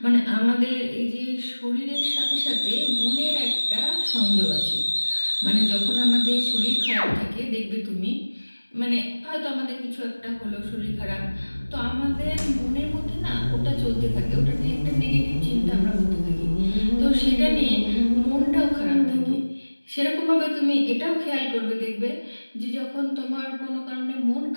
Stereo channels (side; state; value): both; inverted; correlation -1.00